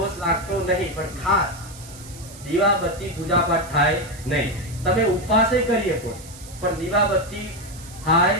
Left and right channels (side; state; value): right; noise; hiss, 18 dB below the sound